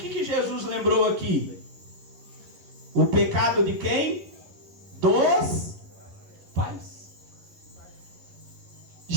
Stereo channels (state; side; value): late; left; 11 ms